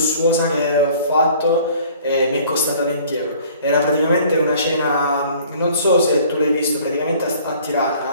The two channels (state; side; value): inverted; both; correlation -0.53